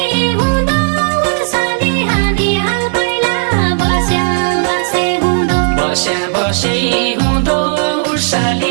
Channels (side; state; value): left; silent; digital silence